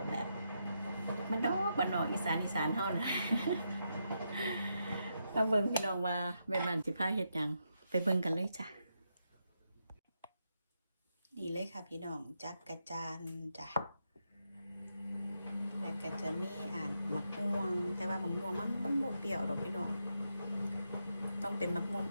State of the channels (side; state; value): both; inverted; correlation -0.82